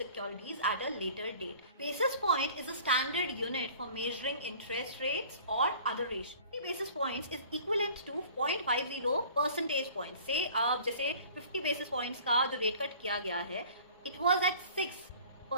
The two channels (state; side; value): inverted; both; correlation -0.48